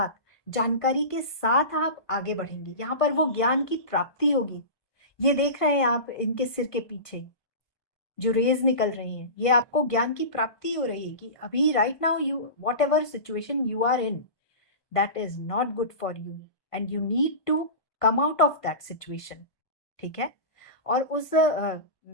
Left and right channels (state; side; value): late; right; 1.5 ms